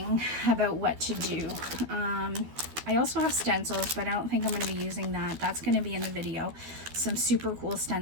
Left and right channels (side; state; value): left; late; 12 ms